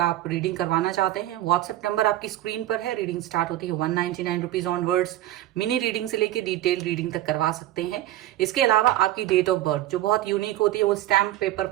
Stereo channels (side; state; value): left; quieter; 14.5 dB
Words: आप रीडिंग करवाना चाहते हैं, व्हाट्सएप नंबर आपकी स्क्रीन पर है। रीडिंग स्टार्ट होती है 199 रुपीज ऑनवर्ड्स। मिनी रीडिंग से लेके डिटेल रीडिंग तक करवा सकते हैं। इसके अलावा आपकी डेट ऑफ बर्थ जो बहुत यूनिक होती है, वो स्टैम्प पेपर